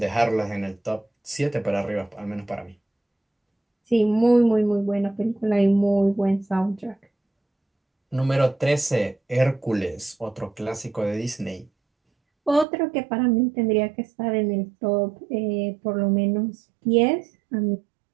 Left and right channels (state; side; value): drops out; left; at 12.7 s